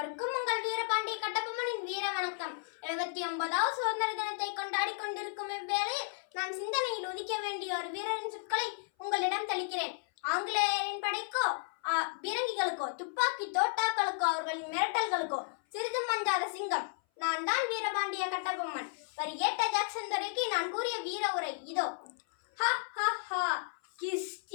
உங்கள் வீரபாண்டிய கட்டபொம்மனின் வீர வணக்கம். 79வது சுதந்திர தினத்தை கொண்டாடி கொண்டிருக்கும் இவ்வேளையில் நான் சிந்தனையில் உதிக்க வேண்டிய ஒரு வீரரின் சொற்களை உங்களிடம் தெளிக்கிறேன். ஆங்கிலேயரின் படைக்கோ பீரங்கிகளுக்கோ துப்பாக்கி தோட்டாக்களுக்கோ அவர்களின் மிரட்டல்களுக்கோ சிறிதும் மஞ்சாத சிங்கம் நான் தான் வீரபாண்டிய கட்டபொம்மன். வரி ஏட்ட ஜாக்சன் துரைக்கு நான் கூறிய வீர உரை இதோ.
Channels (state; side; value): silent; right; 55 dB below the other